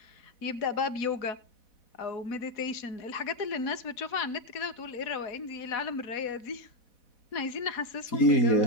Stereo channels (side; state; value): right; late; 4.1 ms